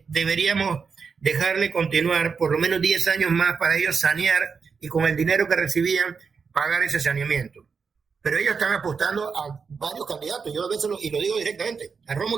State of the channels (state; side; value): quieter; left; 5.5 dB